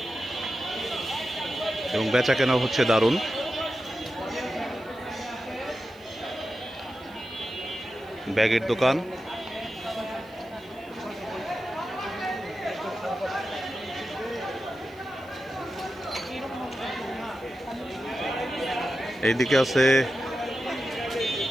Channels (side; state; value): right; noise; hiss, 28 dB below the sound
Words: এবং বেচা কেনা হচ্ছে দারুণ। ব্যাগের দোকান, এইদিকে আছে